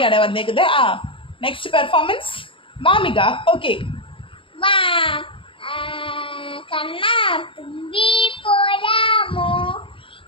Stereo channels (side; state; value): right; late; 0.25 ms